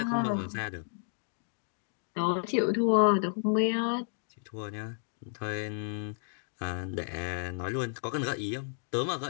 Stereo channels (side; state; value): right; silent; digital silence